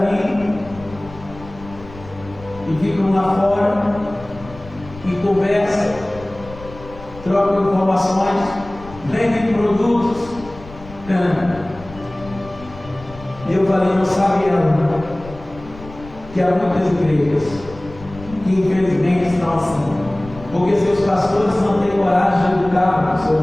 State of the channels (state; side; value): noise; left; rumble, 17 dB below the sound